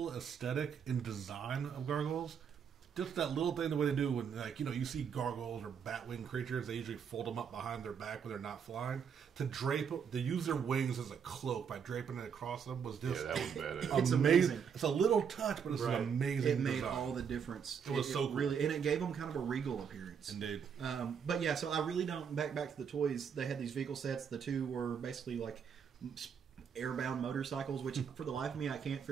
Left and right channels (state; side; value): quieter; left; 7.1 dB